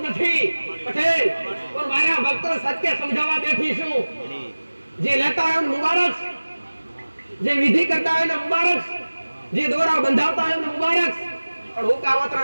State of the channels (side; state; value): both; inverted; correlation -1.00